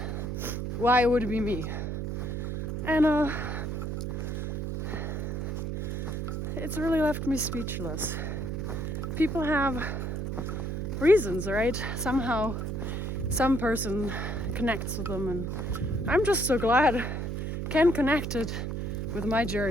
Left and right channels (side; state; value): right; noise; hum, 3 dB below the sound